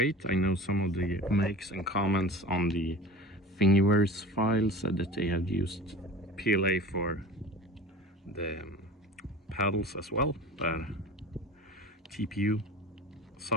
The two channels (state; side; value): normal; both; correlation 0.38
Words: I know some of the makes and comments on the Thingiverse file said that they have used PLA for the paddles as well, but TPU,